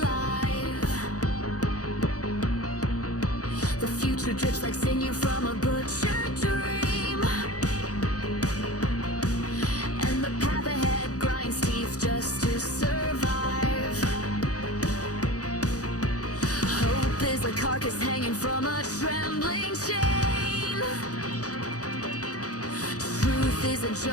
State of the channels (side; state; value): right; late; 0.67 ms